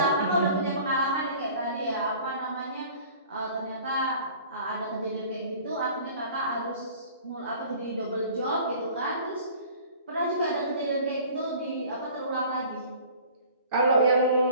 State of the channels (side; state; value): both; inverted; correlation -0.47